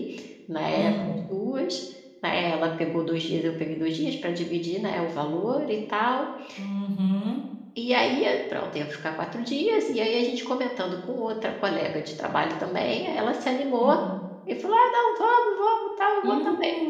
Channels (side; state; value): both; identical; correlation 1.00